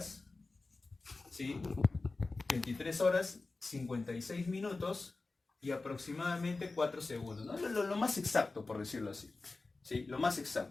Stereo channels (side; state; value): right; quieter; 3.5 dB